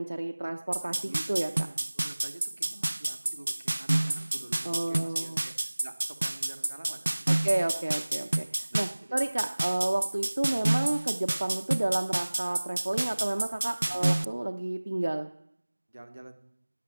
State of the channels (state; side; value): inverted; both; correlation -1.00